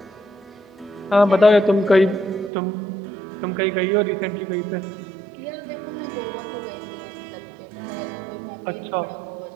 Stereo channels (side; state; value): left; drops out; at 2.5 s